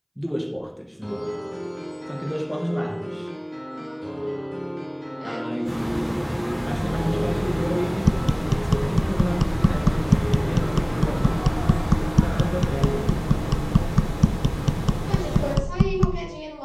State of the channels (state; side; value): identical; both; correlation 1.00